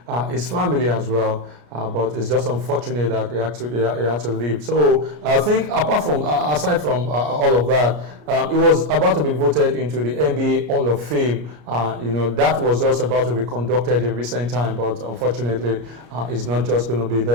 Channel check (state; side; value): late; left; 33 ms